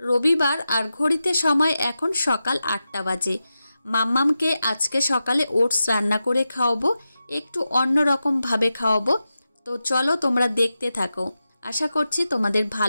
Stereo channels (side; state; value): both; inverted; correlation -0.91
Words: রবিবার, আর ঘড়িতে সময় এখন সকাল 8টা বাজে। মাম্মামকে আজকে সকালে ওটস রান্না করে খাওয়াবো, একটু অন্যরকম ভাবে খাওয়াবো। তো চলো তোমরা দেখতে থাকো, আশা করছি তোমাদের